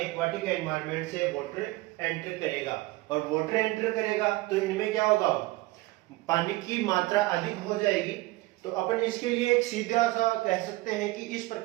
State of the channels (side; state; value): left; quieter; 20.1 dB